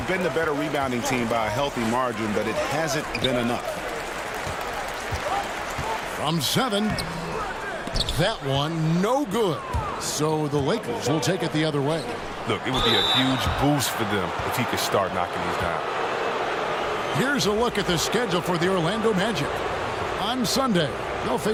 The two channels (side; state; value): both; identical; correlation 1.00